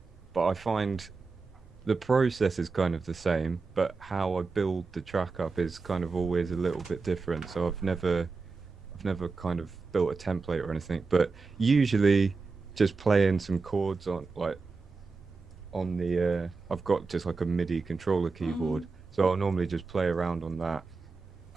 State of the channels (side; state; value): left; quieter; 4.3 dB